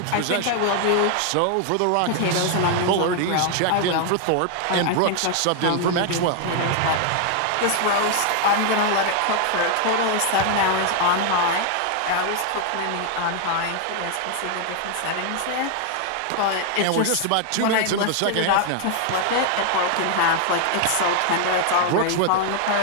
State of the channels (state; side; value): different; both; correlation 0.00